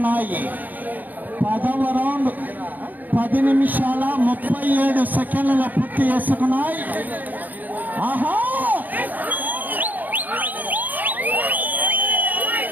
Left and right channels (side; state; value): left; late; 0.083 ms